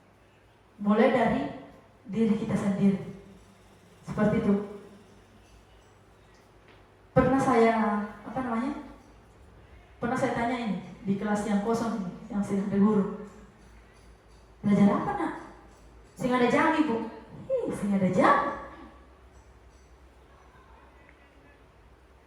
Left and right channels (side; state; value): both; identical; correlation 1.00